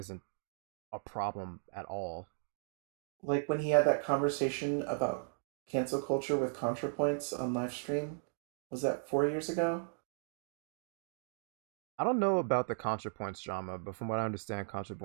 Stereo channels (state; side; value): silent; left; digital silence